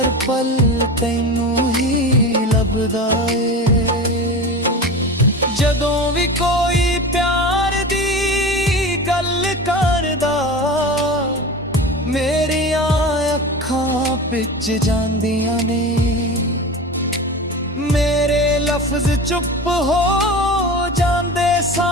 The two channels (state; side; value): normal; both; correlation 0.30